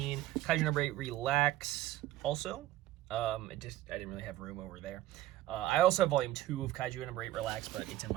Kaiju number 8 Relax also. I didn't really have room over there. I also have volume 2 of Kaiju number 8 Relax, but it's in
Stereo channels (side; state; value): left; quieter; 14.8 dB